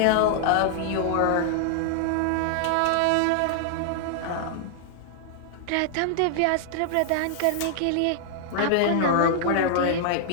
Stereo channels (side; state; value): both; different; correlation 0.00